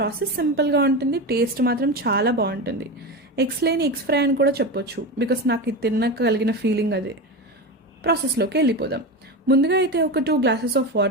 సింపుల్‌గా ఉంటుంది, టేస్ట్ మాత్రం చాలా బాగుంటుంది. ఎగ్స్ లేని ఎగ్స్ ఫ్రై అని కూడా చెప్పొచ్చు, బికాస్ నాకు ఇది తిన్నాక కలిగిన ఫీలింగ్ అదే. ప్రాసెస్లోకి వెళ్ళిపోదాం. ముందుగా అయితే ఒక 2 గ్లాసెస్ ఆఫ్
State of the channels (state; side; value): normal; both; correlation 0.21